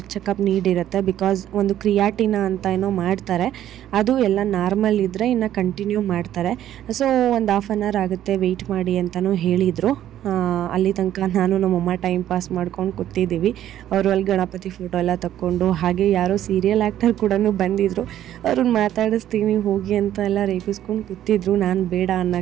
ಚೆಕಪ್ ನೀಡಿರುತ್ತೆ, ಬಿಕಾಸ್ ಒಂದು ಕ್ರಿಯಾಟಿನ ಅಂತ ಏನೋ ಮಾಡ್ತಾರೆ, ಅದು ಎಲ್ಲ ನಾರ್ಮಲ್ ಇದ್ದರೆ ಇನ್ನು ಕಂಟಿನ್ಯೂ ಮಾಡ್ತಾರೆ. ಸೊ ಒಂದು ಹಾಫ್ ಆನ್ ಅವರ್ ಆಗುತ್ತೆ, ವೆಯ್ಟ್ ಮಾಡಿ ಅಂತಲೂ ಹೇಳಿದರು. ಅಲ್ಲಿ ತನಕ ನಾನು ನಮ್ಮಮ್ಮ ಟೈಮ್ ಪಾಸ್ ಮಾಡ್ಕೊಂಡು ಕೂತಿದ್ದೀವಿ. ಅವರು ಅಲ್ಲಿ ಗಣಪತಿ ಫೋಟೋ ಎಲ್ಲ ತಕ್ಕೊಂಡು, ಹಾಗೆ ಯಾರೋ ಸೀರಿಯಲ್ ಆ್ಯಕ್ಟರ್ ಕೂಡ ಬಂದಿದ್ದರು, ಅವ್ರನ್ನ ಮಾತಾಡಿಸ್ತೀನಿ ಹೋಗಿ ಅಂತ ಎಲ್ಲ ರೇಗಿಸ್ಕೊಂಡು ಕೂತಿದ್ರು, ನಾನು ಬೇಡ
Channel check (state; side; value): quieter; left; 11.8 dB